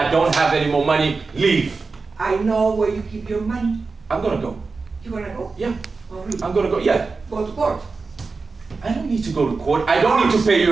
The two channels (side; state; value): left; quieter; 4.3 dB